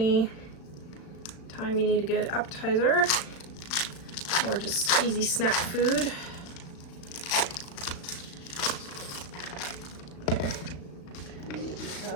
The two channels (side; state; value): right; late; 36 ms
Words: time you need a good appetizer or just easy snack food. Okay,